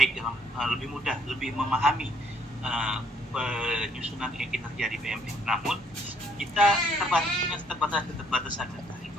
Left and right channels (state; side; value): normal; both; correlation 0.66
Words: lebih mudah, lebih memahami penyusunan kinerja di PMM. Namun kita punya keterbatasan